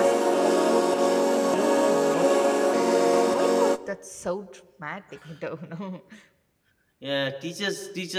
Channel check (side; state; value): both; identical; correlation 1.00